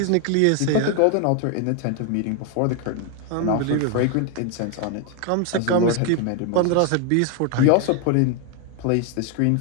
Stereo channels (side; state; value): both; different; correlation 0.00